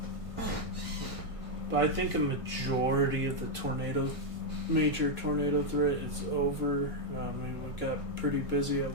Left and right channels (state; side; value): late; left; 1.6 ms